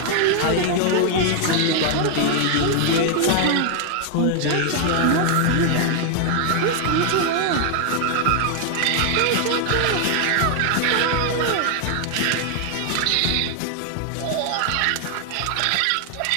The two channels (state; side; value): different; both; correlation 0.00